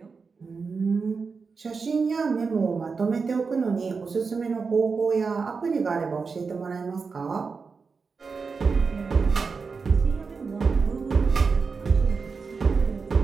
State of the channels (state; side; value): quieter; left; 4.9 dB